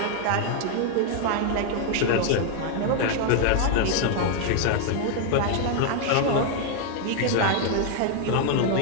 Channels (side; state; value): both; different; correlation 0.00